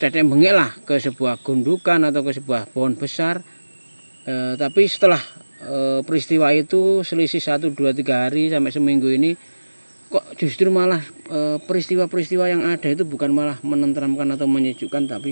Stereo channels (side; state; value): both; inverted; correlation -1.00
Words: bengek lah ke sebuah gundukan atau ke sebuah pohon besar. Tapi setelah peristiwa itu selisih 1, 2, 3 hari sampai seminggu ini, kok justru malah peristiwa-peristiwa yang ada itu bukan malah menenteramkan atau menyejukkan,